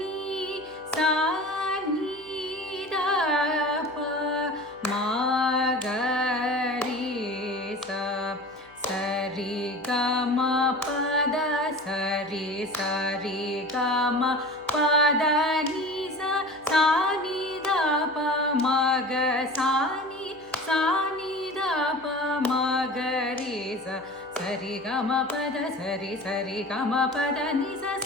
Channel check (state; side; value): noise; left; hum, 28 dB below the sound